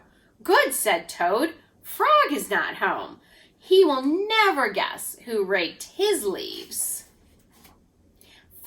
"Good," said Toad. "Frog is not home. He will never guess who raked his leaves."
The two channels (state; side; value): identical; both; correlation 1.00